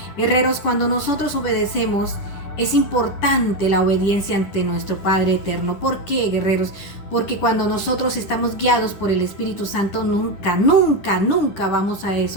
Guerreros, cuando nosotros obedecemos, es importante la obediencia ante nuestro Padre eterno. ¿Por qué, guerreros? Porque cuando nosotros estamos guiados por el Espíritu Santo, nunca vamos a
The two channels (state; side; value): late; right; 10 ms